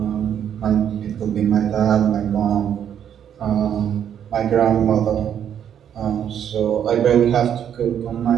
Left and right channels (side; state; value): left; quieter; 9.2 dB